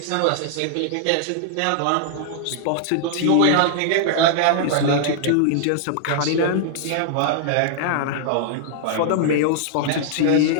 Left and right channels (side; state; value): both; different; correlation -0.01